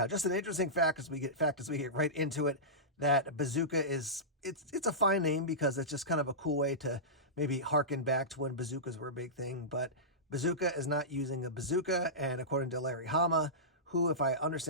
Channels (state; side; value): normal; both; correlation -0.17